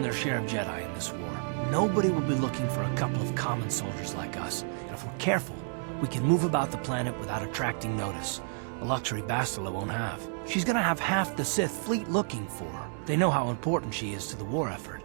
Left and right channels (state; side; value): silent; left; 57 dB below the other